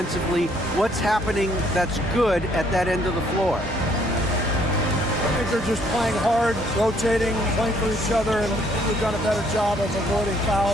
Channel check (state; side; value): normal; both; correlation 0.65